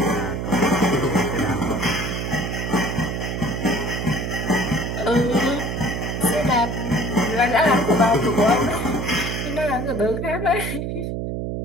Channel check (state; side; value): noise; right; hum, 3 dB below the sound